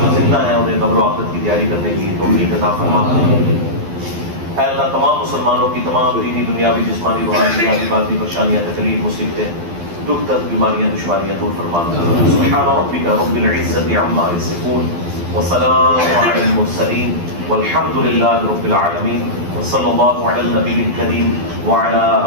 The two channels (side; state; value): left; late; 12 ms